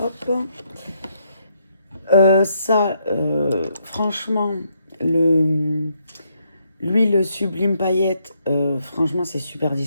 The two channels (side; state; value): both; inverted; correlation -0.75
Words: Ça, franchement, l'huile sublime paillette, franchement, c'est super